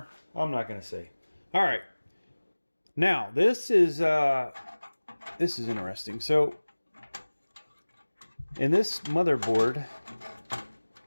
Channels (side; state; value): both; inverted; correlation -1.00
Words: I'm not going to say. All right. Now, this is interesting. So, in this motherboard,